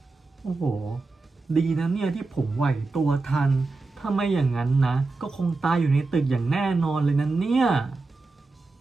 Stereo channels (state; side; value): quieter; left; 3.6 dB